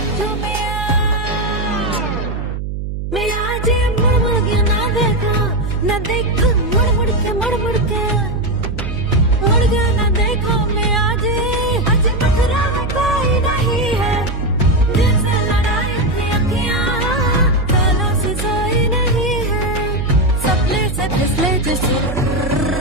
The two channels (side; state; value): right; noise; hum, 5 dB below the sound